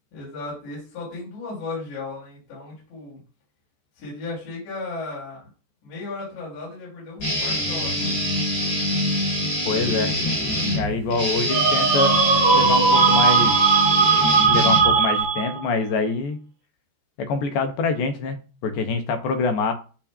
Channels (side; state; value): right; late; 14 ms